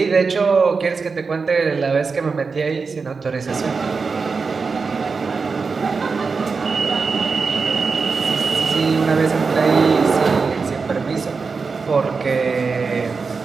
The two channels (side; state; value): left; quieter; 4.8 dB